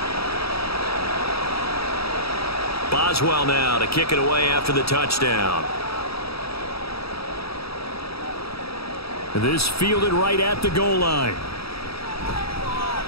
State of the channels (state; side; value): late; right; 0.77 ms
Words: Boswell now to kick it away after the touchdown. This fielded right at the goal line.